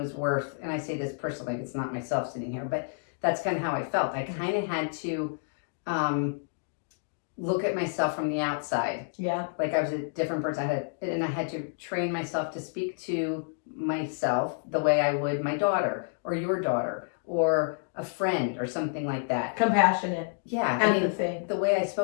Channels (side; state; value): right; silent; digital silence